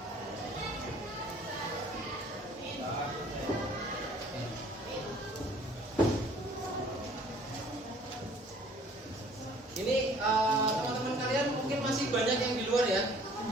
Ini teman-teman kalian mungkin masih banyak yang di luar ya.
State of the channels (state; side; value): normal; both; correlation 0.55